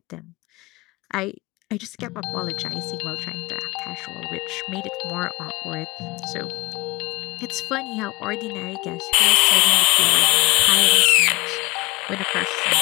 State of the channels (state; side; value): quieter; right; 24.4 dB